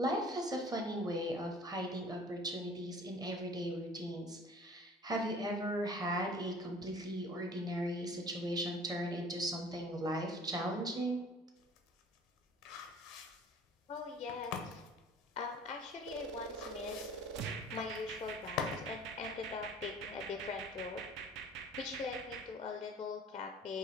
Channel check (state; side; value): normal; both; correlation 0.49